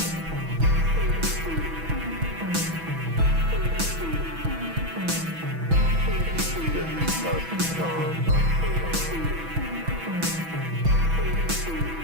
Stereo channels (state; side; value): late; left; 6.1 ms